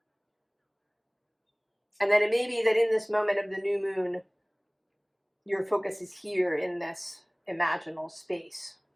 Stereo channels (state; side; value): identical; both; correlation 1.00